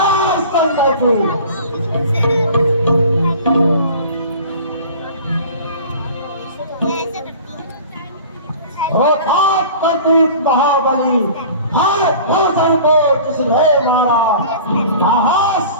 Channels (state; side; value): inverted; both; correlation -0.42